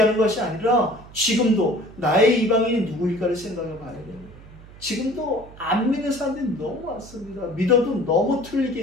것이 아니라 지금도 나의 이방인이 누구일까를 생각해 봐야 됩니다. 지금도 안 믿는 사람들이 너무 많습니다. 믿어도 너무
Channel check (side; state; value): right; noise; hum, 20 dB below the sound